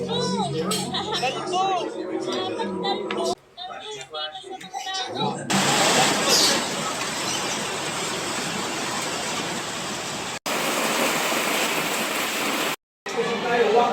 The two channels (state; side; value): identical; both; correlation 1.00